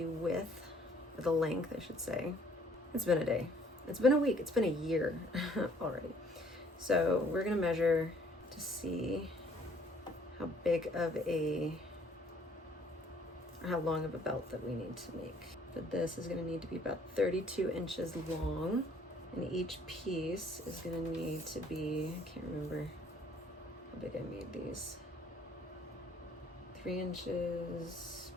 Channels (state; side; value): normal; both; correlation 0.60